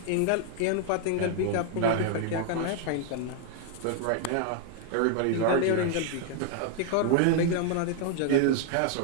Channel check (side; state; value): both; different; correlation 0.00